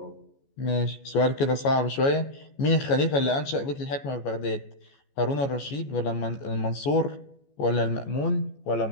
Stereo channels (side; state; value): right; late; 14 ms